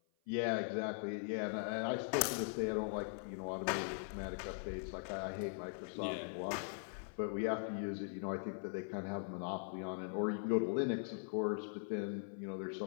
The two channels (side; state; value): right; silent; 50 dB below the other